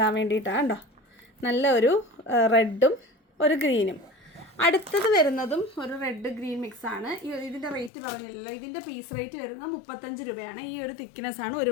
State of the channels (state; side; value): drops out; right; at 7.9 s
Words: വേണ്ടിയിട്ടാണ് കേട്ടോ. നല്ല ഒരു റെഡും ഒരു ഗ്രീനും. അടുത്തത് വരുന്നതും ഒരു റെഡ് ഗ്രീൻ മിക്സാണ്. ഇതിൻ്റെ റേറ്റ് പറഞ്ഞില്ലല്ലോ. ഇതിൻ്റെ പീസ് റേറ്റ് വരുന്നത് 35 രൂപയാണ്. ഈ ഒരു തിക്നെസ്സാണ് ഒരു